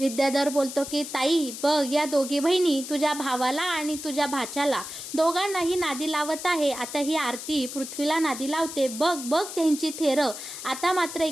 बोलतो की ताई बघ, या दोघी बहिणी तुझ्या भावाला आणि तुझ्या भाच्याला दोघांनाही नादी लावत आहे. आता ही आरती पृथ्वीला नादी लावते, बघ बघ त्यांची थेरं. आता मात्र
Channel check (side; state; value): left; noise; hiss, 9 dB below the sound